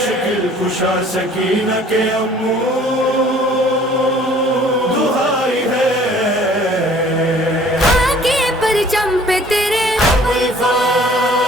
کشا سکینہ کے امو دہائی ہے، آگے پرچم پہ تیرے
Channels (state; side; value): normal; both; correlation 0.53